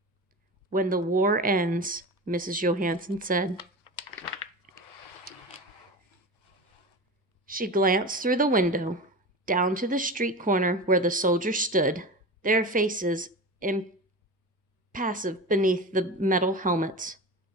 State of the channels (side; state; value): both; normal; correlation 0.28